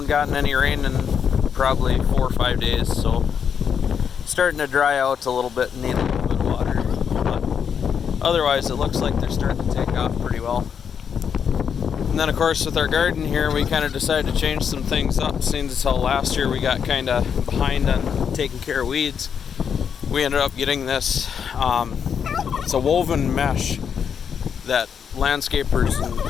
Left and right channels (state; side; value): quieter; right; 7.3 dB